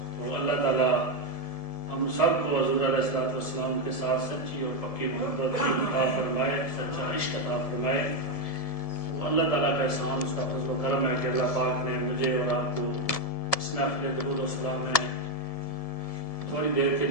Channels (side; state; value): right; late; 1.7 ms